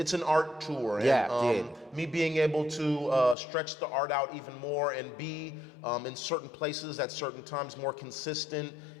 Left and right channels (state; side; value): drops out; right; at 3.4 s